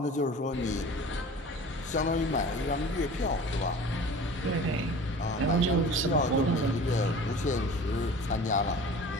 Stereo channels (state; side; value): normal; both; correlation 0.41